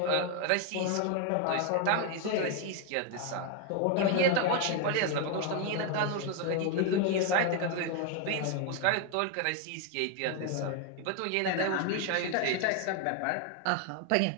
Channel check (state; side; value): different; both; correlation 0.01